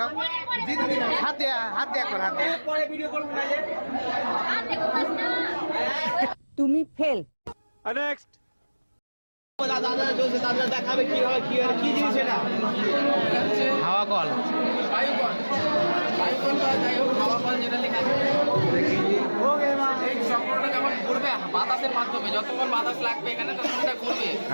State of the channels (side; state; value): both; inverted; correlation -1.00